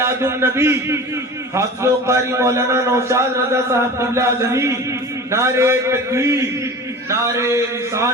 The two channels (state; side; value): normal; both; correlation 0.36